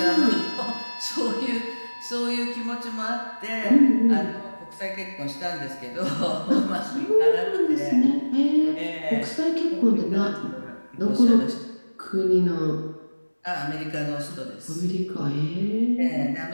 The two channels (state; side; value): inverted; both; correlation -1.00